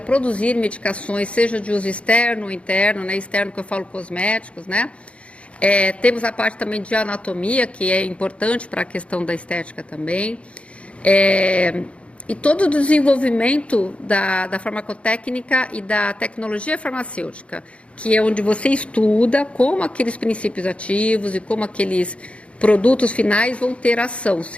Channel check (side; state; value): right; late; 0.061 ms